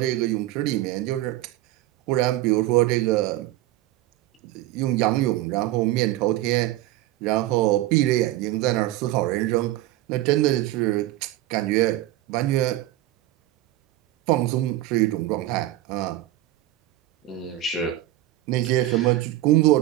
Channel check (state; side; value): quieter; left; 15.3 dB